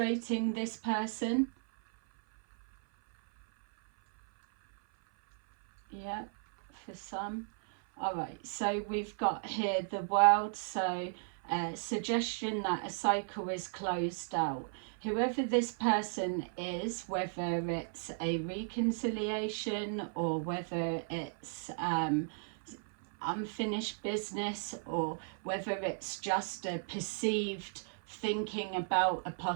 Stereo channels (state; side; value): silent; left; 54 dB below the other